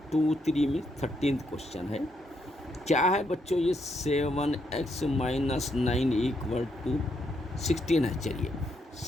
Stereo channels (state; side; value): normal; both; correlation 0.77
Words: 2 3 में 13th क्वेश्चन है। क्या है बच्चों, ये 7x - 9 = 16 है। चलिए